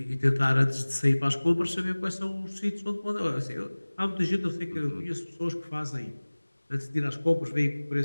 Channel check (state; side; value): inverted; both; correlation -1.00